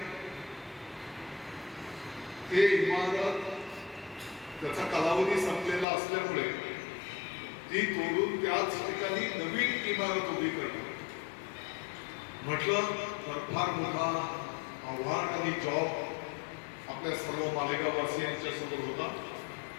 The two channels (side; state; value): right; drops out; at 5.9 s